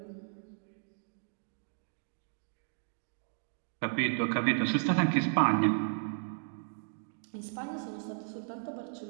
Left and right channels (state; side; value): silent; left; digital silence